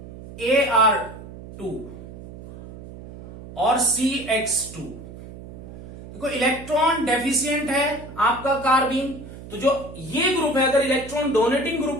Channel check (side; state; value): right; noise; hum, 15 dB below the sound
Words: और CX2। देखो इलेक्ट्रॉन डेफिशिएंट है आपका कार्बीन, तो जो ये ग्रुप है अगर इलेक्ट्रॉन डोनेटिंग